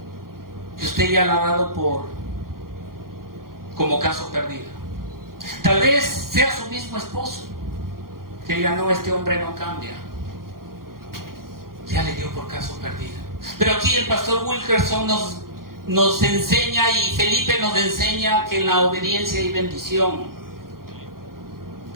que usted ya la ha dado como caso perdido. Tal vez sea su mismo esposo, que diga: no, este hombre no cambia. Ya le dio por caso perdido. Pero aquí el pastor Wilkerson nos enseña, y Felipe nos enseña, que en la obediencia hay bendición.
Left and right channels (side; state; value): left; late; 0.92 ms